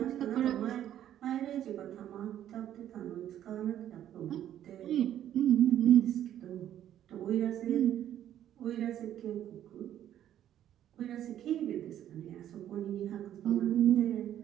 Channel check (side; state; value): left; quieter; 11.2 dB